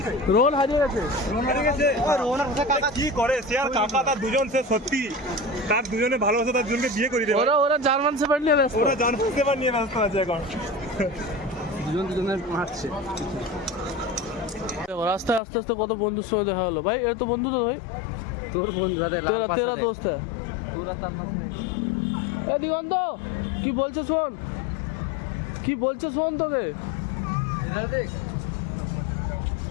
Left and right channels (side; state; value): right; drops out; at 15.4 s